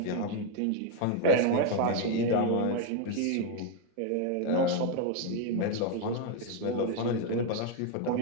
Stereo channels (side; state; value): both; different; correlation 0.01